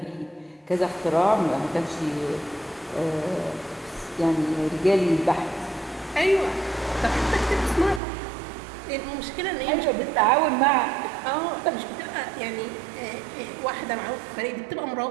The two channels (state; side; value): drops out; left; at 8.0 s